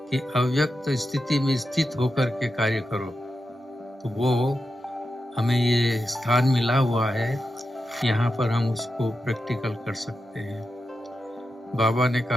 कि अव्यक्त स्थिति में स्थित होकर के कार्य करो, तो वो हमें ये स्थान मिला हुआ है, यहाँ पर हम उसको प्रैक्टिकल कर सकते हैं। बाबा ने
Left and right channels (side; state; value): both; normal; correlation 0.88